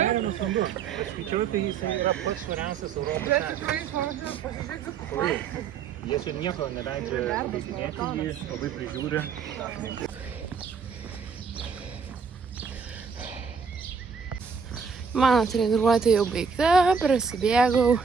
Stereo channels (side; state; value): left; quieter; 6.0 dB